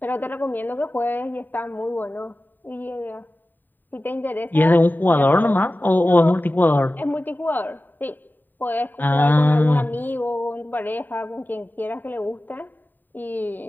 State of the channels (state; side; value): late; right; 0.090 ms